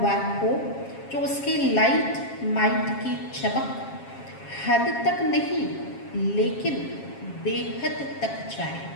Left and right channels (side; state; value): right; late; 7.4 ms